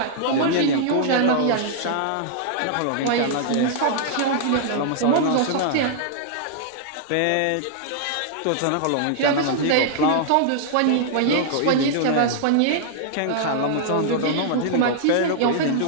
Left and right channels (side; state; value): both; different; correlation -0.01